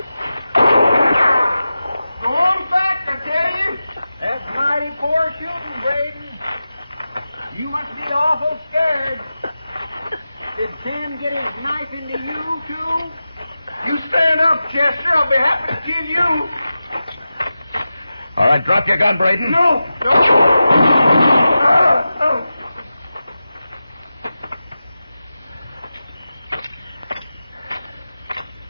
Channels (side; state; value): both; inverted; correlation -0.93